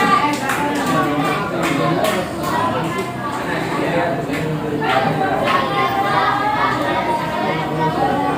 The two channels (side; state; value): both; identical; correlation 1.00